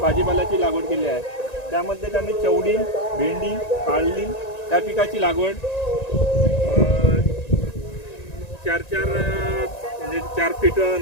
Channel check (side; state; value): right; late; 1.9 ms